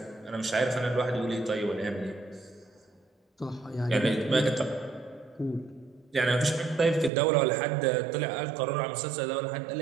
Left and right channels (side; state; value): left; drops out; at 7.1 s